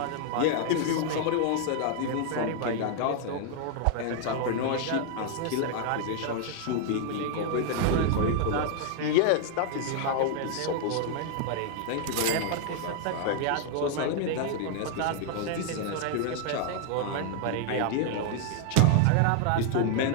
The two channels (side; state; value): both; different; correlation 0.00